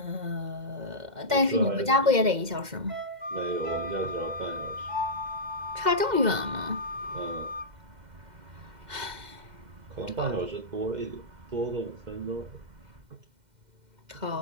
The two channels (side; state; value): left; late; 2.1 ms